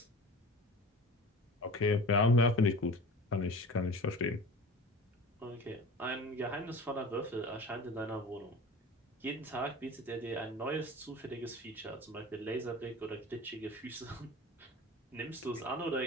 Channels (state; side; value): normal; both; correlation 0.38